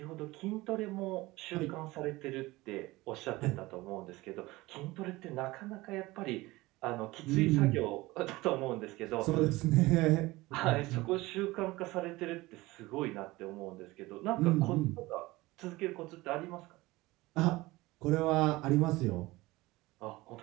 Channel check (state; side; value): quieter; left; 20.2 dB